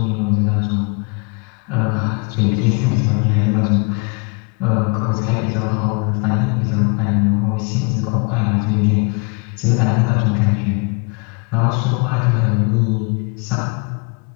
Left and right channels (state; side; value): quieter; right; 31.9 dB